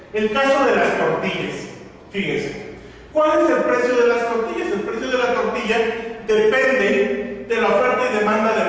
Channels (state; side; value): identical; both; correlation 1.00